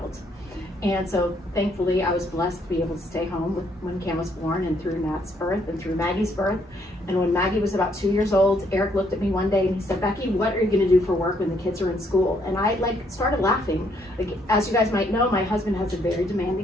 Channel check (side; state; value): both; normal; correlation 0.70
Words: And so thankfully I was blessed to be able to stay home when Cam was born, and through Nat's birth and through Maggie's birth. And when Maggie was about 2 years old, Eric looked at me one day and he said, "Becky, what are you gonna do for work when the kids are in school?" And I started laughing. Like, as you guys might know, my husband has a very